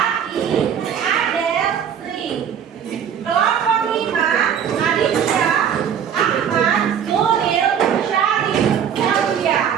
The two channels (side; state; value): left; quieter; 8.4 dB